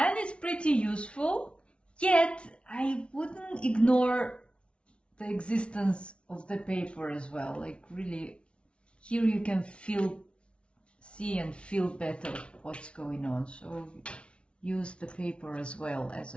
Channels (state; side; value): late; right; 0.059 ms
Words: it's pretty useful, yet I wouldn't ignore the existence of the paper as well. Like really, here you can see and feel better what's going on. So use the paper as well as